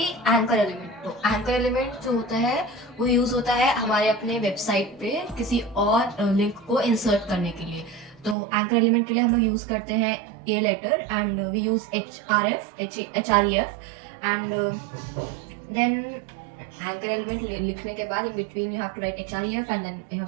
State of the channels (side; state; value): left; drops out; at 8.3 s